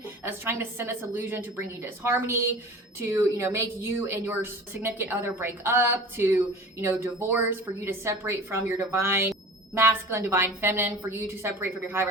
is trying to send this illusion to bring you disharmony, to, make you and your significant other break up, to, divorce, for you to separate from your divine masculine, divine feminine, for you to separate from your high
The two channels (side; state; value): both; normal; correlation 0.39